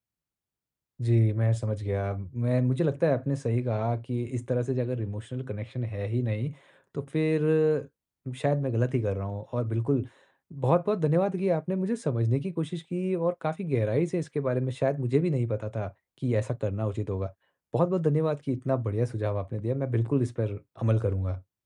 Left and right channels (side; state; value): both; identical; correlation 1.00